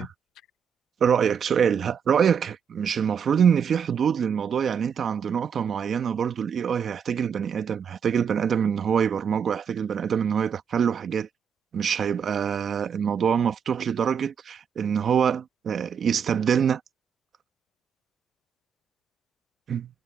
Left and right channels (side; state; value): left; quieter; 7.3 dB